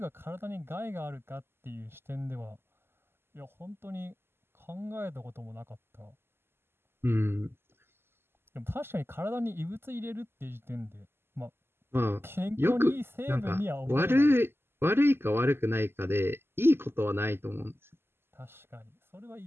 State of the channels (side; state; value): left; late; 0.11 ms